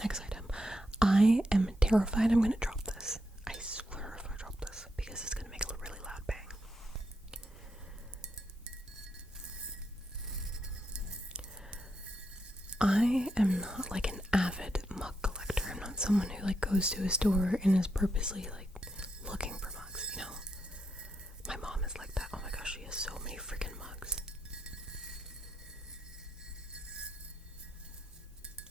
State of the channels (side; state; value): both; normal; correlation 0.82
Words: item. I am terrified I'm gonna drop this. I swear if I drop this, because it's gonna make a really loud bang. I am not like an avid mug collector. I'm not someone who like goes to a store and is purposely like looking for mugs, you know? My mom is like that. Oh my gosh, she has so many freaking mugs.